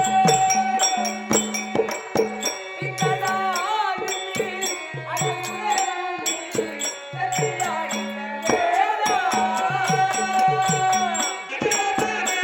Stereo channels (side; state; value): both; identical; correlation 1.00